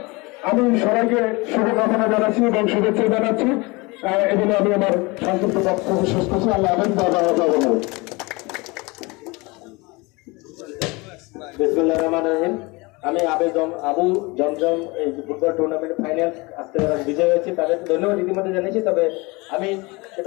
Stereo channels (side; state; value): right; quieter; 25.3 dB